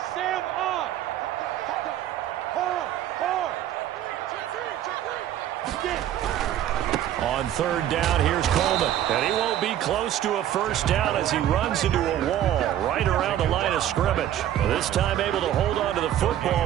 On 3rd down, here's Coleman. And he won't be close to a first down as he runs into a wall right around the line of scrimmage. This time able to hold on to the football,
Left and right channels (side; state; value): left; quieter; 11.7 dB